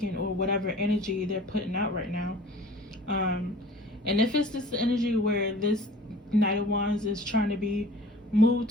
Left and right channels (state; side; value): normal; both; correlation 0.46